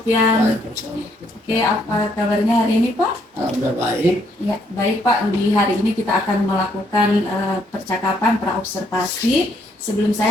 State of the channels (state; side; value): normal; both; correlation 0.70